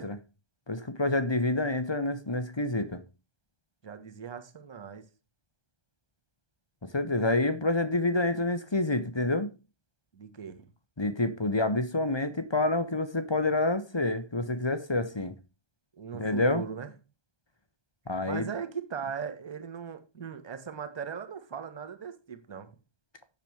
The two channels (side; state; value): right; late; 1.2 ms